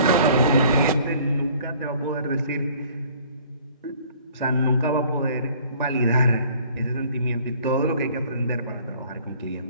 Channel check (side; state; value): both; inverted; correlation -0.54